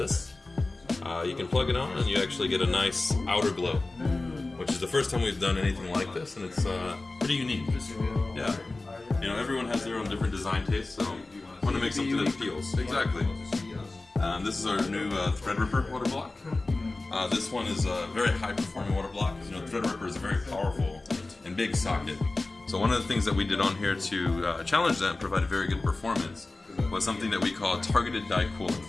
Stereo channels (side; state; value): right; quieter; 3.2 dB